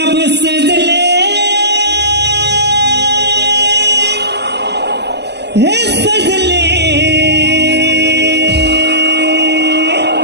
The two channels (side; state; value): left; late; 0.50 ms